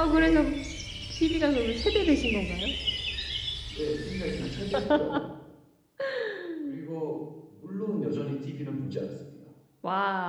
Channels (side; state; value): both; identical; correlation 1.00